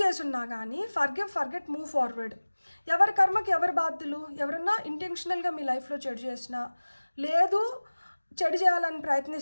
చేసున్నా కానీ ఫర్గివ్, ఫర్గెట్, మూవ్ ఫార్వర్డ్. ఎవరి కర్మకి ఎవరి బాధ్యులు. ఎవరన్నా ఇంటెన్షనల్గా మీ లైఫ్లో చెడు చేసినా, లేదు చెడు చేయాలని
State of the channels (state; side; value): inverted; both; correlation -1.00